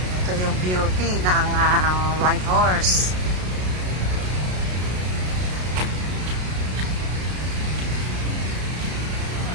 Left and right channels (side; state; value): left; late; 33 ms